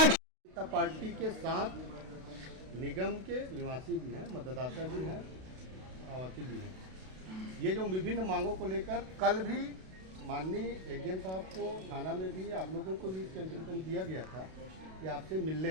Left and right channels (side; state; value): left; late; 32 ms